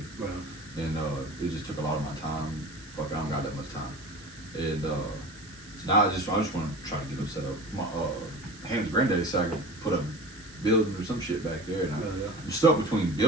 and it just took a lot of my time. Fuck, I don't got that much time. And so now I just want to try to get them set up. My Ham's granddaddy said I could put a building or some shit back there, and I'm stuck between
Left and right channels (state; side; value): noise; right; hiss, 20 dB below the sound